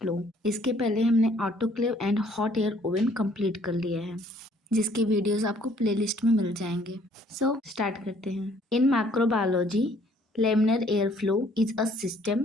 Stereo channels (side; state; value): both; normal; correlation 0.61